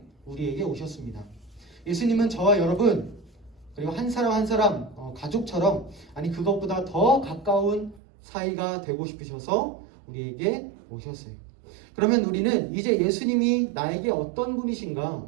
우리에게 오셨습니다. 예수님은 저와 여러분, 그리고 한 사람 한 사람 가족처럼, 아니 그것보다 더 가까운 사이가 되고 싶으셔서 우리에게 오셨어요. 그러면 우리는 이제 예수님이 나에게 어떤 분이신가,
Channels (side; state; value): left; drops out; at 8.0 s